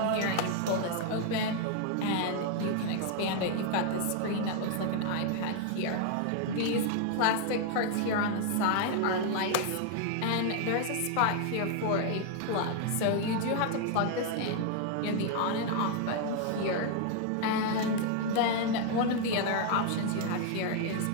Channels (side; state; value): both; different; correlation 0.00